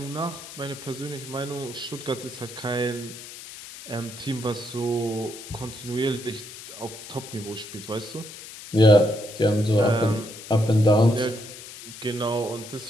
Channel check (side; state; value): left; noise; hiss, 14 dB below the sound